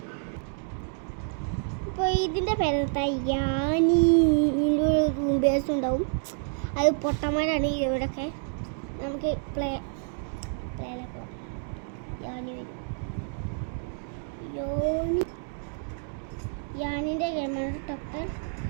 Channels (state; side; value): silent; left; 59 dB below the other